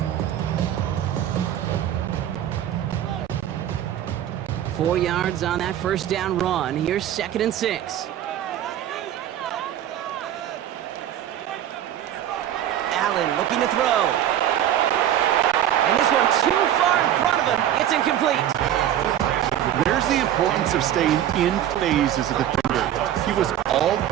Four yards on that first down run. Here's 2nd and 6. Allen looking to throw. And this one too far in front of him. It's incomplete. There's the importance of staying in phase as a defender. He was all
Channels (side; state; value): left; quieter; 11.3 dB